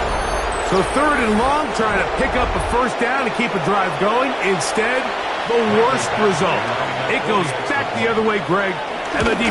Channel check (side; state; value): both; identical; correlation 1.00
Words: So 3rd and long, trying to pick up a 1st down to keep a drive going. Instead, the worst result. It goes back the other way, Greg, and the